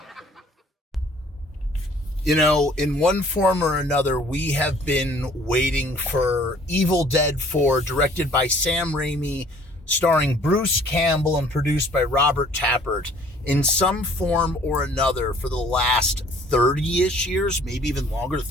You know, in one form or another, we have been waiting for Evil Dead 4, directed by Sam Raimi, starring Bruce Campbell and produced by Robert Tapert, in some form or another for the last 30-ish years, maybe even longer,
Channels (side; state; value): both; normal; correlation 0.56